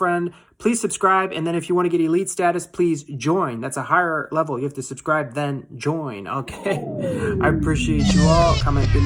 Please subscribe, and then if you want to get elite status, please join. That's a higher level. You have to subscribe, then join, okay? I appreciate you all. Comment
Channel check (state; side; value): identical; both; correlation 1.00